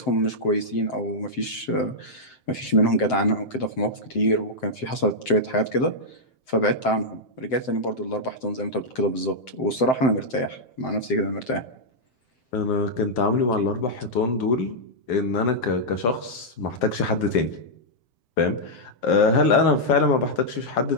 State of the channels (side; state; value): right; late; 7.7 ms